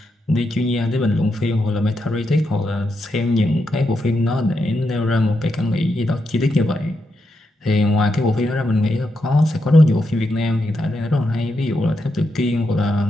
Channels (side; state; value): both; normal; correlation 0.83